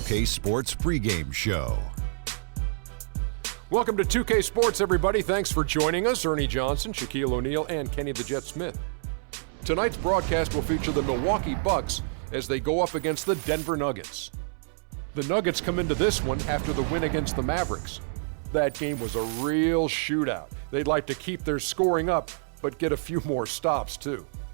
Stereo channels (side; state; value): left; silent; 60 dB below the other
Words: 2K Sports pregame show. Welcome to 2K Sports, everybody. Thanks for joining us. Ernie Johnson, Shaquille O'Neal, and Kenny the Jet Smith. Tonight's broadcast will feature the Milwaukee Bucks as they go up against the Denver Nuggets. The Nuggets come into this one after the win against the Mavericks. That game was a real shootout. They'd like to keep their scoring up, but get a few more stops, too.